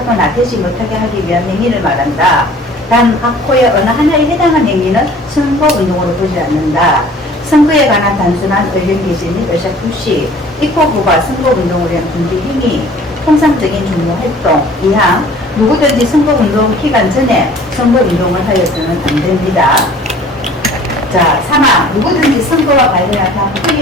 되지 못하게 하기 위한 행위를 말한다. 단 학호의 어느 하나에 해당한 행위는 선거운동으로 보지 않는다. 선거에 관한 단순한 의견 개진 및 의사 표시, 입법부가 선거운동을 위한 준비 행위, 통상적인 종로활동, 이항 누구든지 선거운동 기간 전에 선거운동을 하여서는 안 됩니다. 자, 3항 누구든지 선거와 관련한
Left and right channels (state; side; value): normal; both; correlation 0.50